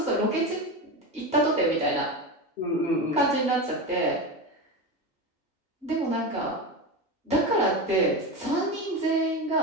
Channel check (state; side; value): normal; both; correlation 0.20